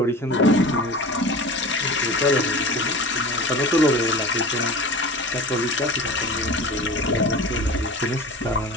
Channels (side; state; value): both; normal; correlation 0.35